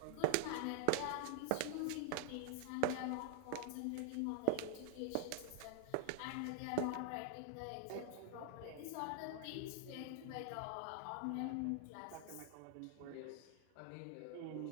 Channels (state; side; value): different; both; correlation -0.01